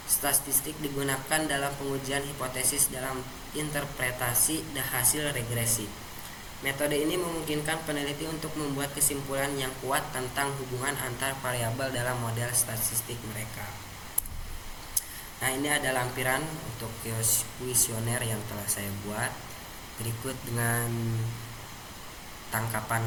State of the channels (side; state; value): both; identical; correlation 1.00